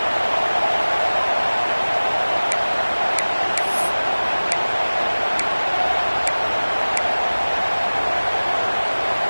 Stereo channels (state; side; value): inverted; both; correlation -1.00